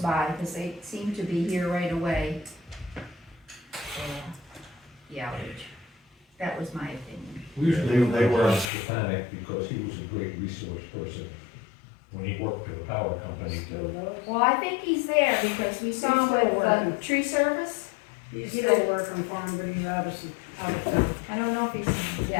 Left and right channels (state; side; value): drops out; right; at 8.7 s